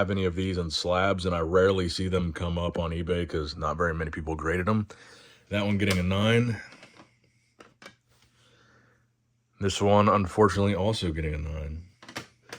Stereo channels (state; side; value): identical; both; correlation 1.00